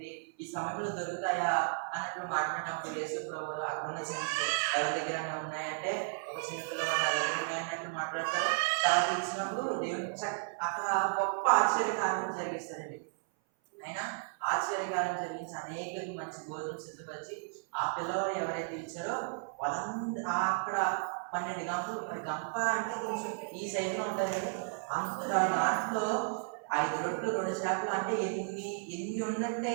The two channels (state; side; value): silent; left; 55 dB below the other